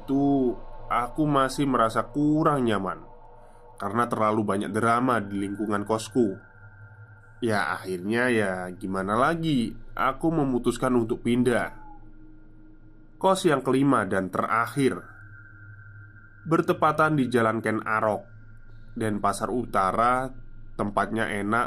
aku masih merasa kurang nyaman karena terlalu banyak drama di lingkungan kosku. Ya akhirnya ya gimana lagi, aku memutuskan untuk pindah. Kos yang kelima dan terakhir bertepatan di Jalan Ken Arok dan Pasar Utara. Tempatnya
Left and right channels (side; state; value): both; identical; correlation 1.00